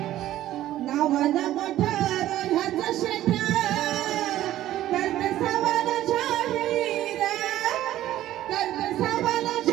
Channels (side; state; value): left; quieter; 13.7 dB